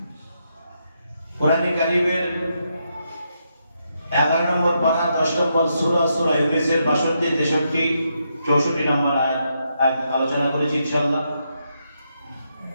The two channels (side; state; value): both; inverted; correlation -0.81